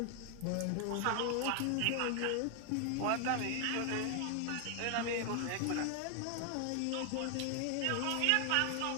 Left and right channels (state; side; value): different; both; correlation 0.00